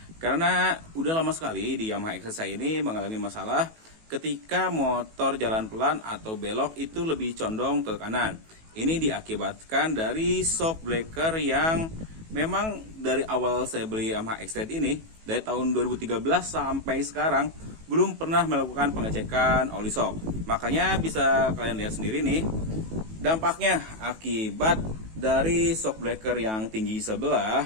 Karena udah lama sekali di Yamaha XR saya ini mengalami masalah ketika motor jalan pelan atau belok itu lebih condong ke kanan. Ini diakibatkan dari shock breaker yang memang dari awal saya beli Yamaha XR ini, dari tahun 2013 sampai sekarang belum pernah melakukan pengecekan oli shock. Makanya bisa kalian lihat sendiri nih dampaknya akibat dari shock breaker yang tinggi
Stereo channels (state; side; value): late; left; 18 ms